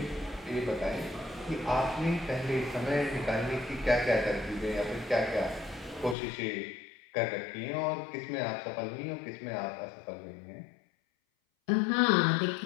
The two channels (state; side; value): drops out; right; at 6.2 s